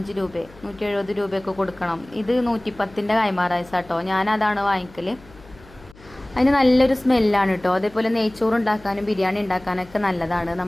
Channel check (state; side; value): noise; left; hum, 23 dB below the sound